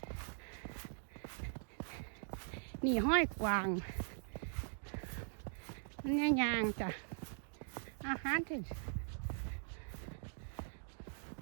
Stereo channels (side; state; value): left; silent; digital silence